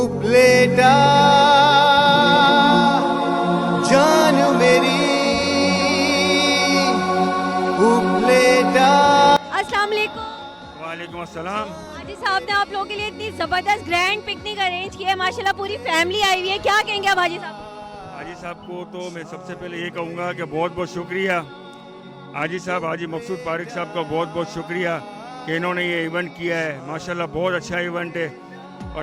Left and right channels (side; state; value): both; identical; correlation 1.00